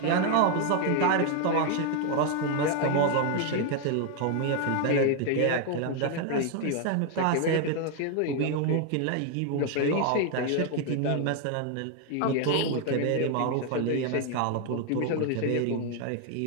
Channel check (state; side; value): different; both; correlation 0.00